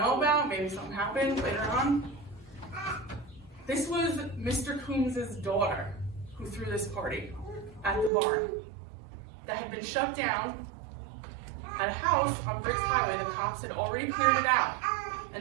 about? Maybe something happened later on? This was Mr. Coombs' daughter who threw this party at the barn that had been shut down at a house on Briggs Highway. The cops had already cleared it out.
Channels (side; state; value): left; drops out; at 8.1 s